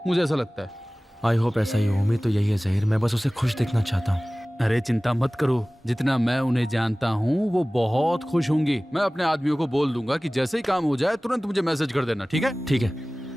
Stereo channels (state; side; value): normal; both; correlation 0.98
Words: मुझे ऐसा लगता है। आई होप ऐसा ही हो। उम्मीद तो यही है ज़हीर। मैं बस उसे खुश देखना चाहता हूँ। अरे चिंता मत करो, जितना मैं उन्हें जानता हूँ वो बहुत खुश होंगी। मैं अपने आदमियों को बोल दूंगा कि जैसे ही काम हो जाए तुरंत मुझे मैसेज कर देना, ठीक है? ठीक है।